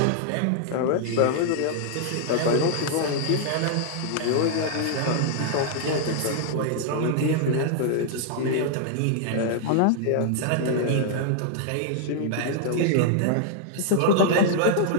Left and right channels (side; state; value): both; different; correlation -0.01